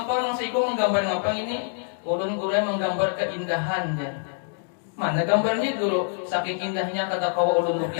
parang siko menggambar ngapang ini? Ulun guru menggambar keindahan ya. Mana gambarnya dulu, saking indahnya kata kau ulun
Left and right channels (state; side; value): silent; right; digital silence